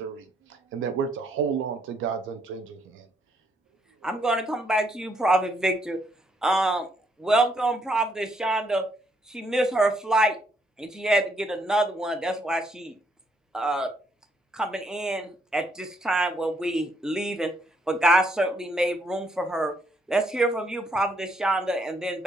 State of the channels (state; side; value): normal; both; correlation 0.72